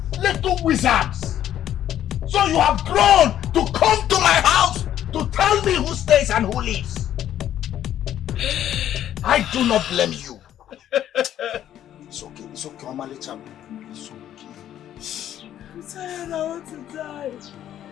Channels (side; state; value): right; quieter; 11.3 dB